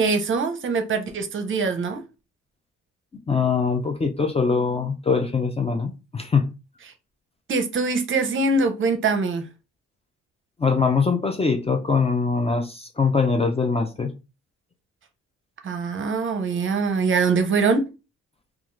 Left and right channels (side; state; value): both; normal; correlation 0.51